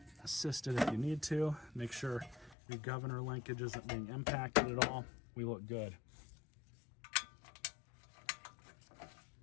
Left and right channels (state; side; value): drops out; right; at 2.6 s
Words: Assist it if you need to. Make sure your governor linkage isn't being impacted at all. We look good.